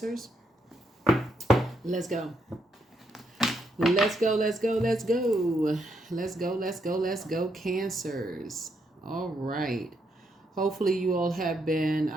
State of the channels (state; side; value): normal; both; correlation 0.77